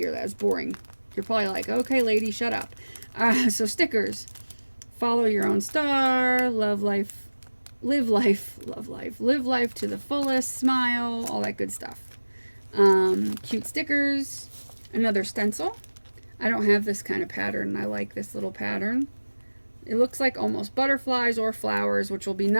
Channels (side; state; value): both; inverted; correlation -1.00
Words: that. It's boring. You're probably like, okay, lady, shut up. So stickers. Follow your own star. Love life. Live life. Love life. Live life to the fullest. Smile. All that good stuff. Cute stickers. Another stencil. I don't have this kind of pattern. I like this little pattern. It looks like almost butterflies or flowers, which will be